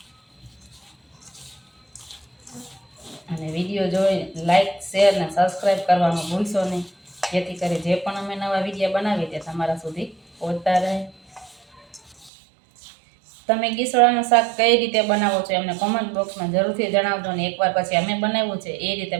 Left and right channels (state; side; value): drops out; left; at 12.3 s